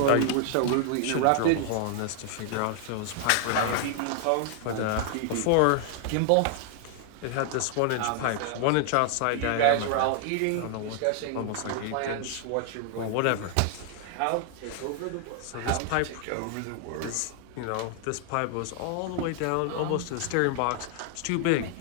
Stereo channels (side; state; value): both; different; correlation 0.00